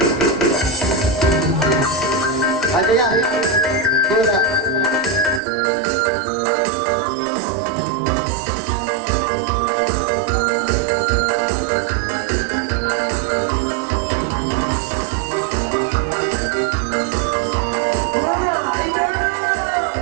Ada ya? Pura.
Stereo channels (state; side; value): drops out; left; at 5.4 s